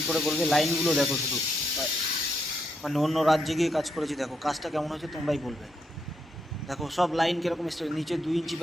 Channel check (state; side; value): normal; both; correlation 0.79